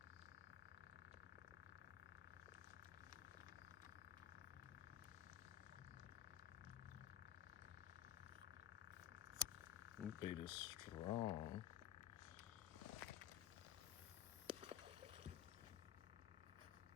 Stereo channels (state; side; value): quieter; right; 11.5 dB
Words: Bait is strong.